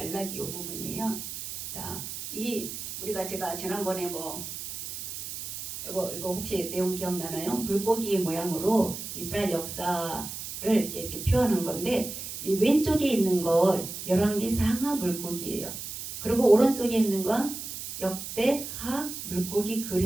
이 부분이에요. 자, 이 우리가 제가 지난번에 이거 혹시 내용 기억나나요? 물고기 모양으로 이스라엘 역사를 이렇게 표현한 건데, 이 왼쪽에 있는 거 열왕기 상하 물고기예요. 그리고 오른쪽에 있는 건 역대하 물고기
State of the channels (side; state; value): right; noise; hiss, 8 dB below the sound